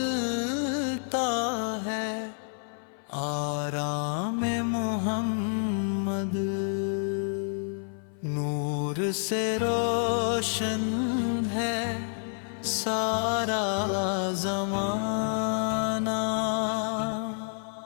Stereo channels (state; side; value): silent; right; 56 dB below the other